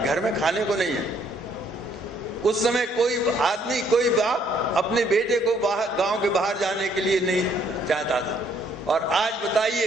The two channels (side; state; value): both; normal; correlation 0.66